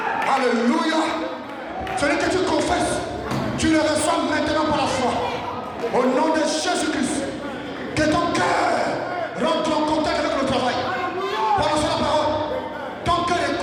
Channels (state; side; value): identical; both; correlation 1.00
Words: Alléluia. Celui que tu confesses, tu le reçois maintenant par la foi. Au nom de Jésus-Christ. Que ton cœur rentre en contact avec le travail. Prononce la parole. Ton cœur